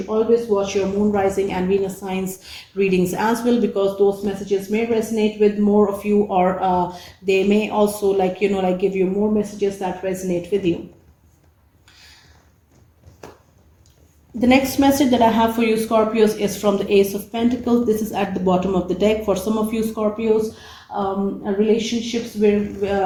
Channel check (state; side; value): identical; both; correlation 1.00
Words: always watch your moon, rising, and Venus signs readings as well, because those messages may resonate with more of you, or they may also, like, like give you more messages that resonate with you. The next message that I have for you Scorpios is from the Ace of Pentacles. This is at the bottom of the deck. For some of you Scorpios, relationships where